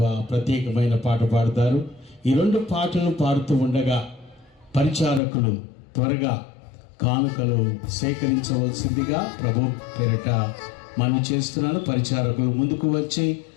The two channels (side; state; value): right; drops out; at 5.2 s